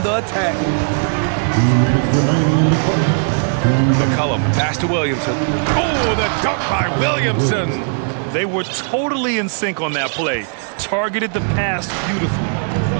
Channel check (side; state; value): left; silent; 56 dB below the other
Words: the attack. McCollum, pass to Williamson. Oh, the dunk by Williamson. They were totally in sync on that play. Targeted the pass beautifully.